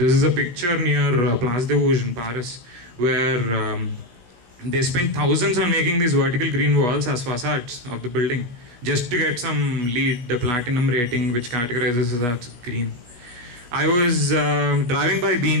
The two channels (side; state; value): left; late; 16 ms